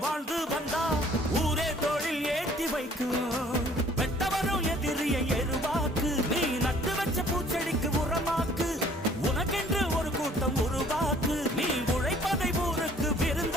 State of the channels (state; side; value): normal; both; correlation 0.56